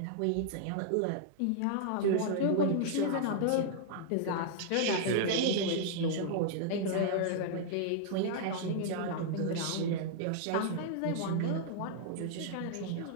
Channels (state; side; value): different; both; correlation -0.01